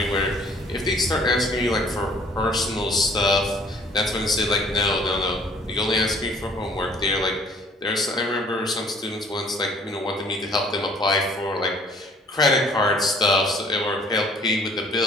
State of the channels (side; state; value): both; normal; correlation 0.56